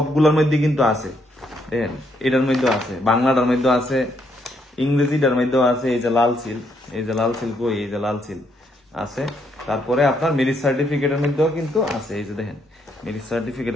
মধ্যে কিন্তু আছে, দেখেন এটার মধ্যে আছে, বাংলাটার মধ্যে আছে, ইংরেজিটার মধ্যেও আছে। এই যে লাল সিল, এই যে লাল সিল কই, এই যে লাল সিল আছে। তারপরে আপনার ম্যারেজ সার্টিফিকেটের মধ্যেও কিন্তু আছে, এই যে দেখেন ম্যারেজ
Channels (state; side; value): normal; both; correlation 0.74